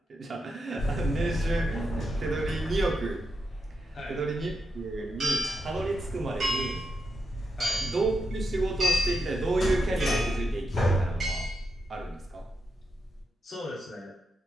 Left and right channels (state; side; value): normal; both; correlation 0.85